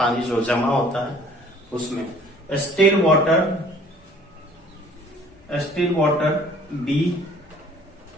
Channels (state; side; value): normal; both; correlation 0.54